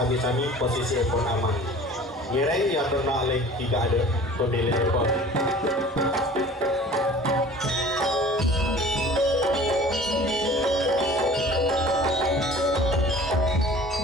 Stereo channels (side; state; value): both; normal; correlation 0.45